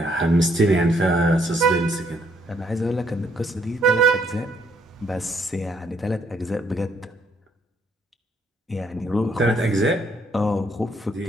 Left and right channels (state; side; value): normal; both; correlation 0.70